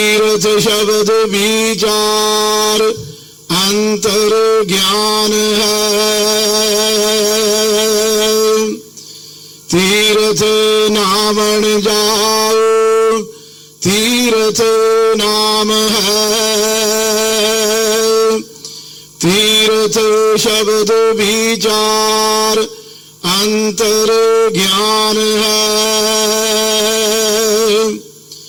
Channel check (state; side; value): identical; both; correlation 1.00